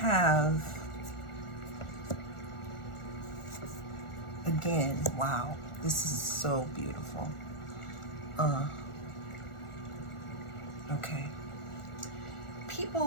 again, wow, this is so beautiful. Okay.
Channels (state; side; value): late; right; 1.4 ms